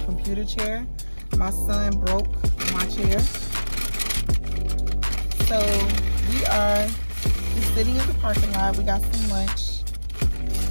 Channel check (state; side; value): inverted; both; correlation -1.00